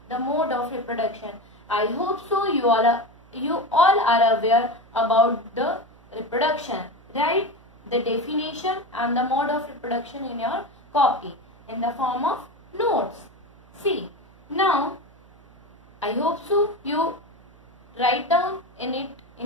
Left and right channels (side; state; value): right; noise; hum, 26 dB below the sound